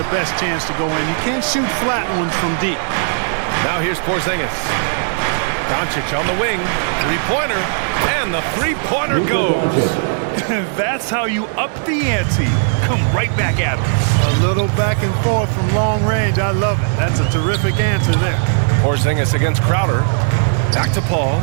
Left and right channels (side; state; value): left; silent; digital silence